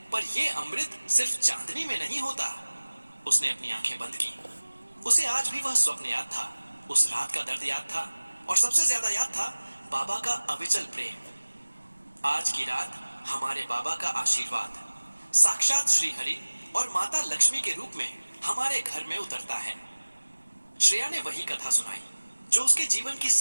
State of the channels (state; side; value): inverted; both; correlation -1.00